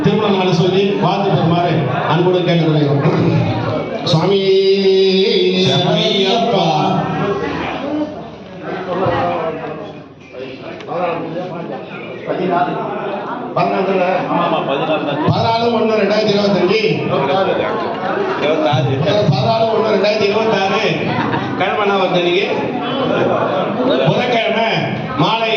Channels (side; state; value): both; identical; correlation 1.00